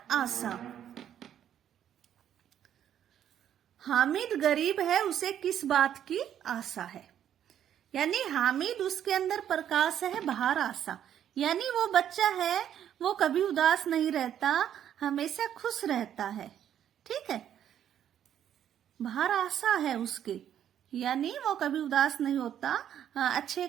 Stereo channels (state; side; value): quieter; left; 10.1 dB